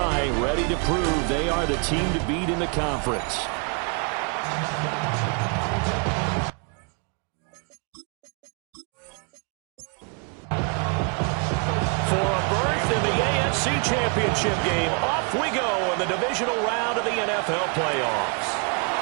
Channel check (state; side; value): quieter; left; 37.8 dB